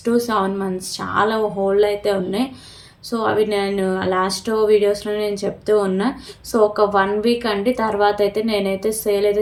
మంత్స్ చాలా హోల్డ్‌లో అయితే ఉన్నాయి. సో అవి నేను లాస్ట్ వీడియోస్‌లో నేను చెప్తూ ఉన్నా. సో ఒక 1 వీక్ అండి. తర్వాత అయితే నేనైతే సేల్ అయితే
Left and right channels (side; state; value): both; identical; correlation 1.00